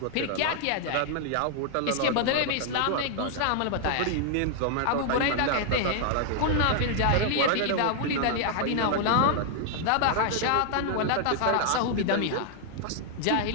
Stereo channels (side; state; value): both; different; correlation 0.00